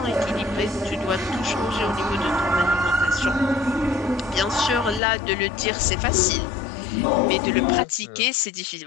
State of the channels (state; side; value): drops out; right; at 5.0 s